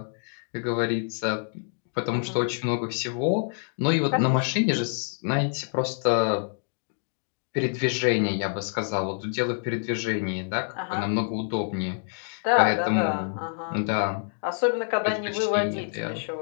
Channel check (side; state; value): right; silent; digital silence